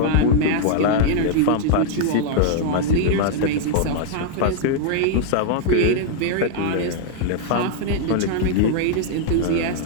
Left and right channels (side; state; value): both; different; correlation -0.01